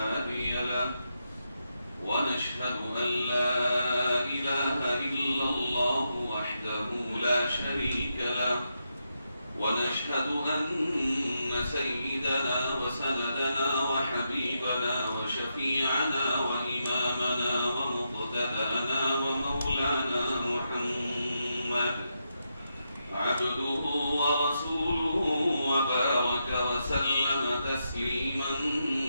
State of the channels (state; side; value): inverted; both; correlation -0.84